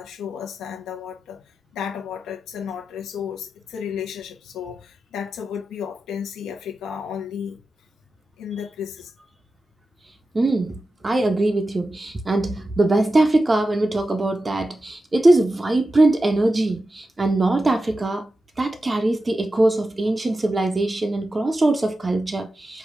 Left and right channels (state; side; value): normal; both; correlation 0.92